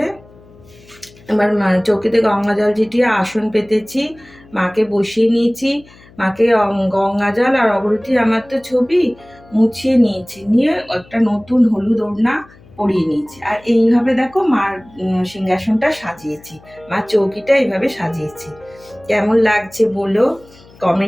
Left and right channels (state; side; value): noise; left; hum, 25 dB below the sound